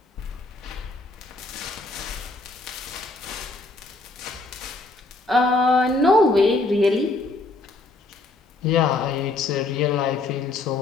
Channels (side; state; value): right; quieter; 3.3 dB